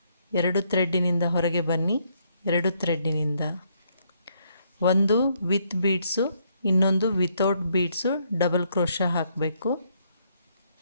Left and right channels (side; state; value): both; inverted; correlation -0.72